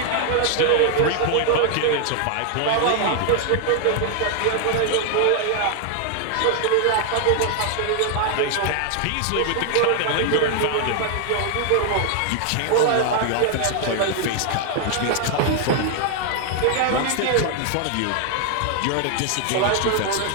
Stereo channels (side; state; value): both; different; correlation 0.00